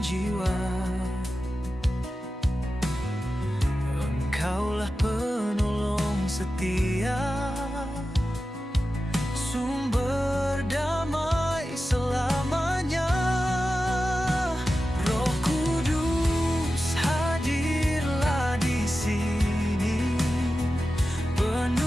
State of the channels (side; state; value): both; normal; correlation 0.93